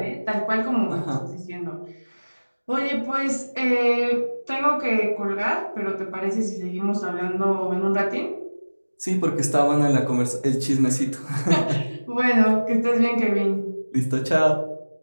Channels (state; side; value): inverted; both; correlation -1.00